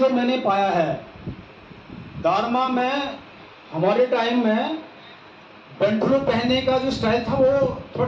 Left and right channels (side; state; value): both; identical; correlation 1.00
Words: मैंने पाया है दारमा में, हमारे टाइम में पेंटलू पहनने का जो स्टाइल था वो